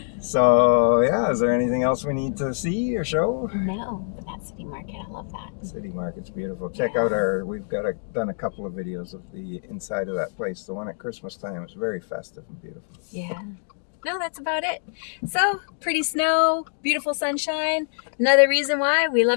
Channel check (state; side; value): silent; right; digital silence